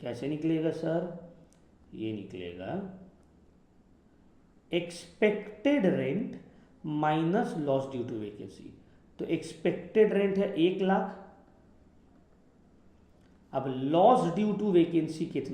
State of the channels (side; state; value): both; identical; correlation 1.00